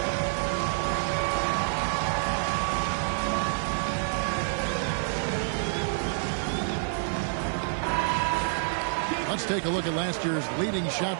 Let's take a look at last year's leading shot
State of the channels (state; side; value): silent; left; digital silence